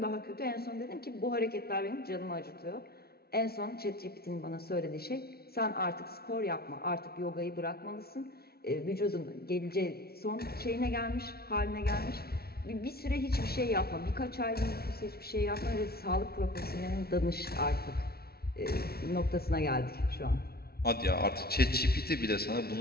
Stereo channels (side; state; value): right; late; 0.45 ms